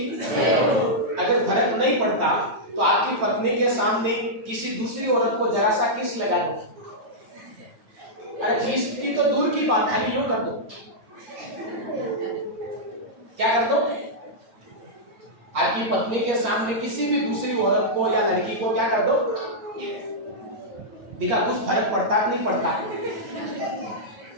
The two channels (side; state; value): left; late; 8.8 ms